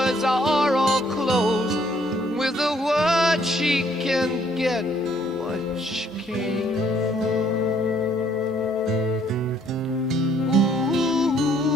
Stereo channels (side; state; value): both; normal; correlation 0.65